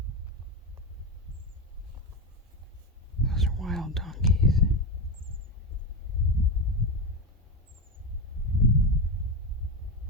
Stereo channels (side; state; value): both; normal; correlation 0.15